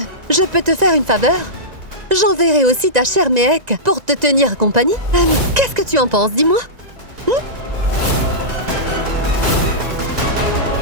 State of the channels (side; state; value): left; late; 1.9 ms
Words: je peux te faire une faveur. J'enverrai aussi ta chère Mehek pour te tenir compagnie. Qu'est-ce que tu en penses, dis-moi?